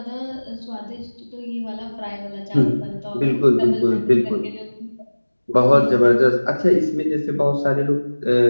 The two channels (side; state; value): both; inverted; correlation -1.00